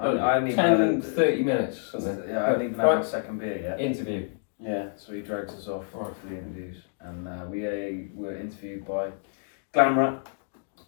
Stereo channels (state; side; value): silent; right; digital silence